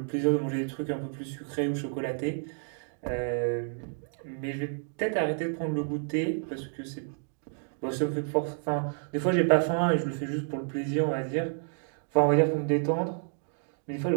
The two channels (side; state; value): left; silent; 58 dB below the other